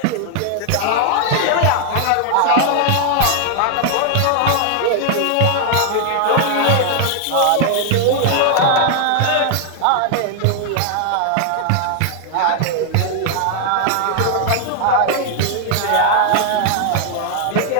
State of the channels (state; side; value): different; both; correlation 0.00